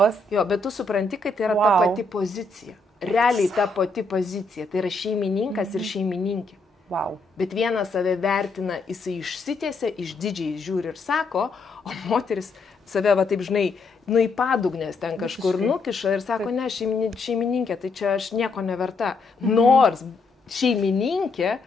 Bet tu supranti, kad tai yra ta pati pozicija. Realiai ta pati pozicija. Tai yra šeimininkas ir šeimininkė. Wow. Bet vienas save vertina, jisai išsitiesia, išdidžiai žiūri ir sako, o moteris save, taip žinai, į padugnės ten kažkur nukiša ir sako, ne, šeimininkė, tai čia aš nieko neverta. Nors šeimininkė,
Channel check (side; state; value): right; quieter; 3.5 dB